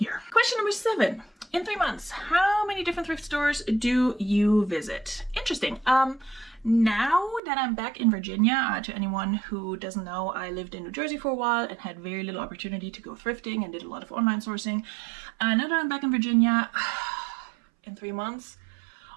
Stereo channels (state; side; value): drops out; left; at 7.4 s